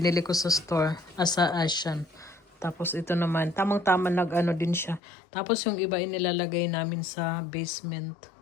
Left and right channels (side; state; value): right; drops out; at 5.0 s